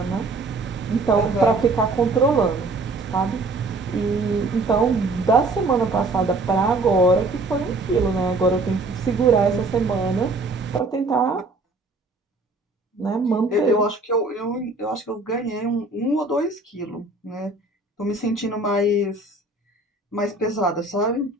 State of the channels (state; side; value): quieter; left; 3.1 dB